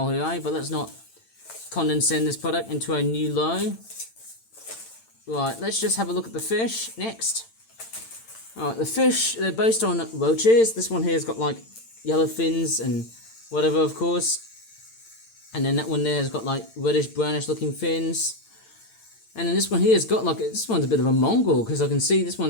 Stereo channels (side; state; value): right; late; 8.9 ms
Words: here, eh? But let's not condensate this product into a new low. Right, let's just have a look at the fish next. Alright, the fish, they're based on roaches. This one here has got like yellow fins and whatever, of course. And then that one there has got like reddish brownish looking fins. And then this one here has got like, this one's a bit of a Mongol, because I can see this